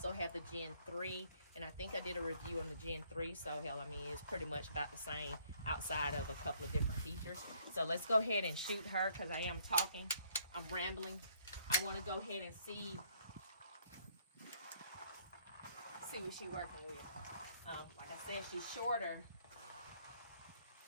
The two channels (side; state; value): both; inverted; correlation -0.64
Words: have the Gen 3, and I think I did a review on the Gen 3, so hell, I mean, it's pretty much about the same outside of a couple of different features. So let's go ahead and shoot her, because I am talking. I'm rambling. I want to go ahead and see what she's working with. Like I said, she's shorter.